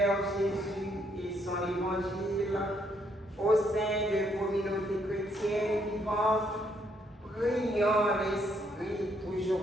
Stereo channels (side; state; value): both; normal; correlation 0.72